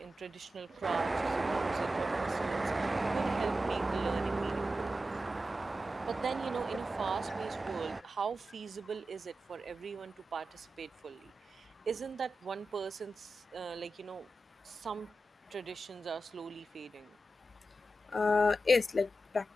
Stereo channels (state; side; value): normal; both; correlation 0.91